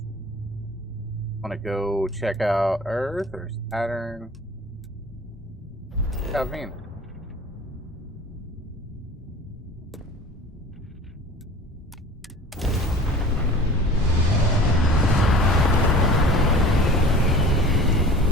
Want to go check out Earth or Saturn? Check out Venus.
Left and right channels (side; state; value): both; normal; correlation 0.41